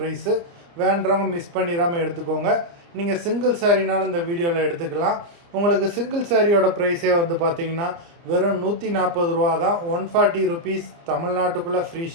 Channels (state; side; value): late; left; 29 ms